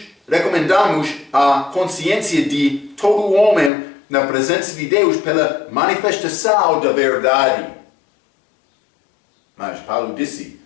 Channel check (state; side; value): drops out; right; at 3.7 s